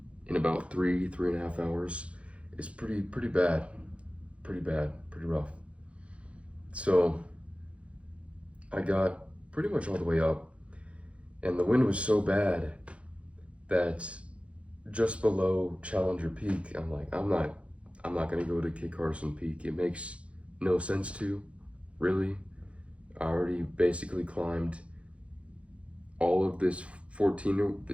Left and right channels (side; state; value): left; late; 0.062 ms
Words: in about 3.5 hours is pretty bad, pretty rough. So I got pretty much all the way up, and the wind was so bad that just below Challenger Peak. I'm like, I'm not gonna go to Kit Carson Peak. It makes no sense to, really. I already basically climbed all of this